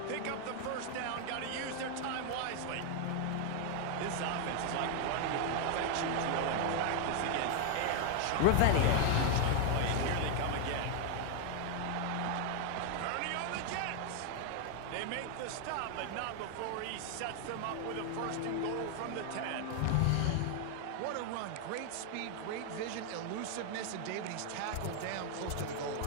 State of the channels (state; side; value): different; both; correlation 0.00